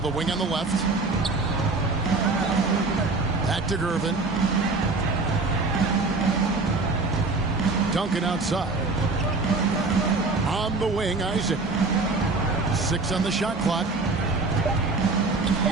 wing on the left. Back to Gervin. Duncan outside. On the wing, Isaac. 6 on the shot clock.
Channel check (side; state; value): left; quieter; 3.6 dB